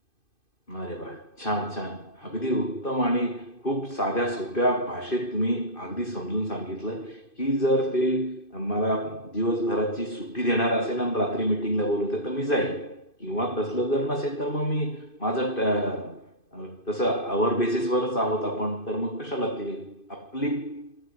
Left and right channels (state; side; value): late; right; 2.5 ms